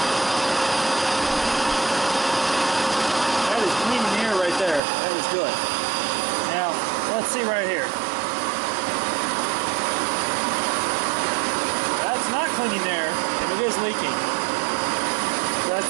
That is cleaning the air right there. That is good. Now, let's see right here. That's not cleaning air, and it is leaking.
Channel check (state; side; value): drops out; left; at 4.8 s